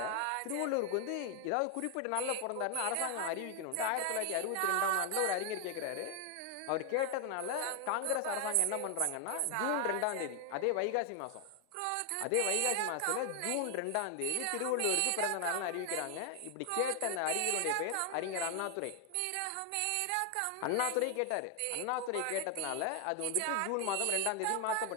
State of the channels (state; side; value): different; both; correlation 0.00